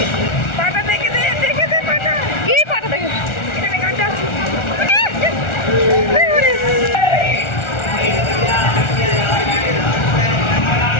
পাটা দেখে দে, দেখে দে পাটা, কি পাটা দেখে, এখানে গানটা আছে।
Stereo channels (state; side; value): late; right; 1.4 ms